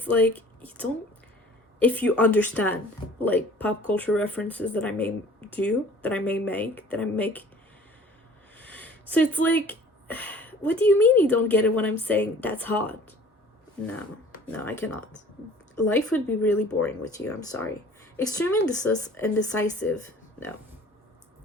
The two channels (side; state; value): both; normal; correlation 0.49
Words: like, if you understand like pop culture references that I may make. So it's like, what do you mean you don't get it when I'm saying that's hot? No, I cannot. Life would be really boring with you. I'm sorry. Extremely indecisive. No.